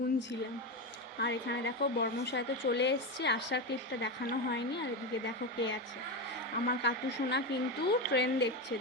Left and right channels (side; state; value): both; normal; correlation 0.15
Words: আর এখানে দেখো বর্মশায় তো চলে এসছে, আসার ক্লিপটা দেখানো হয়নি। আর এদিকে দেখো কে আছে, আমার কাতু সোনা কিন্তু ট্রেন দেখছে,